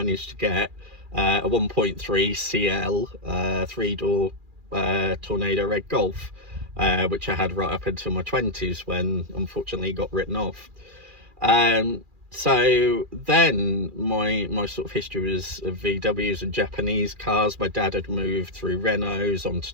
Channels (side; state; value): left; late; 2.4 ms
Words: to get a 1.3 CL 3-door Tornado Red Golf, which I had right up until my 20s, when unfortunately got written off. So then my sort of history was of VWs and Japanese cars. My dad had moved through Renaults onto